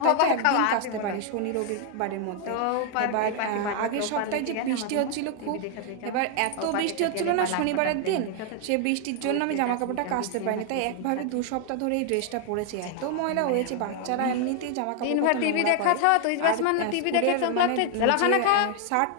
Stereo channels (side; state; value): both; different; correlation 0.00